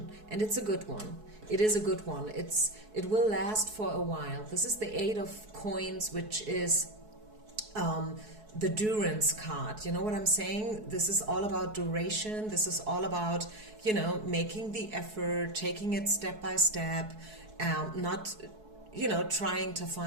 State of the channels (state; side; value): late; left; 4.7 ms